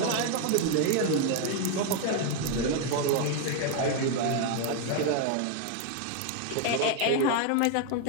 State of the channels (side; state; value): both; different; correlation 0.01